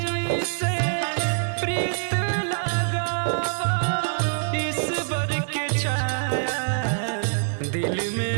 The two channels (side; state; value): left; silent; digital silence